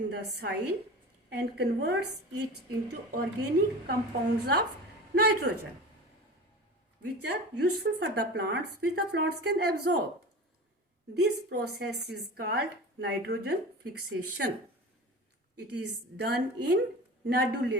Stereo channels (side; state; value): both; normal; correlation 0.34